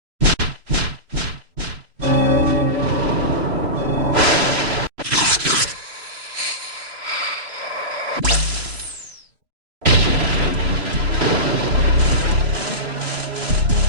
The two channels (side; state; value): left; late; 3.0 ms